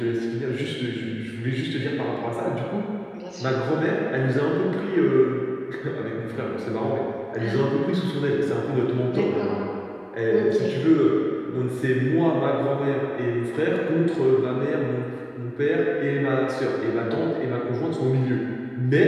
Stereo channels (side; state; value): both; identical; correlation 1.00